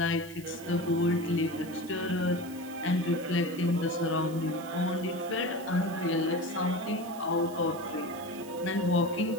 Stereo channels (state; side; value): noise; right; hiss, 19 dB below the sound